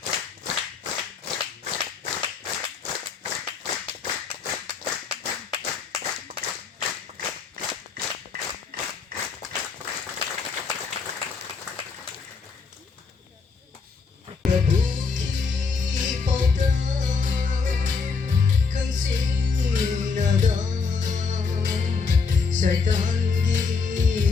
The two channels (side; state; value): right; quieter; 5.0 dB